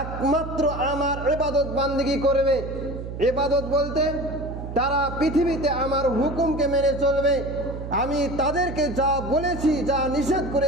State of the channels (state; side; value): noise; right; hum, 8 dB below the sound